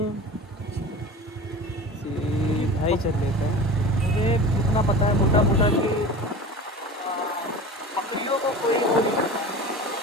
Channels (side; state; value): both; normal; correlation 0.35